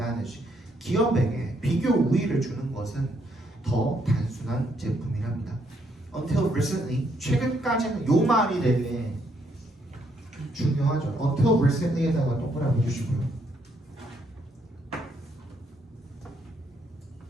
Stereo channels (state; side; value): normal; both; correlation 0.73